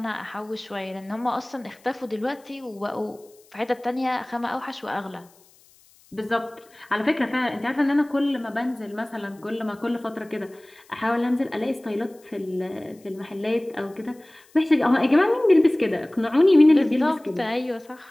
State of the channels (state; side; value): noise; left; hiss, 29 dB below the sound